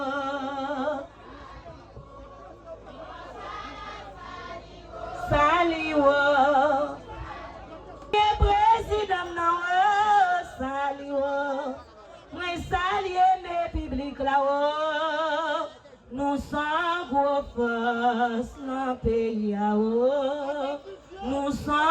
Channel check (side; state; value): both; identical; correlation 1.00